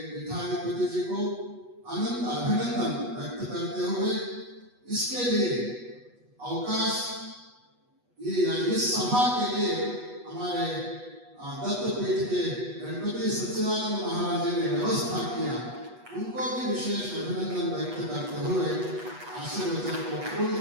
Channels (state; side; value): late; left; 8.2 ms